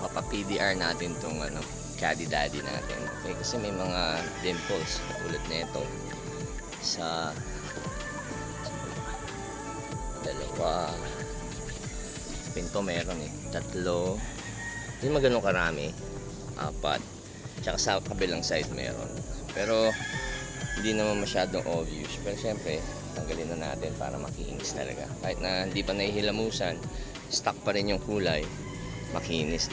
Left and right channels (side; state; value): both; identical; correlation 1.00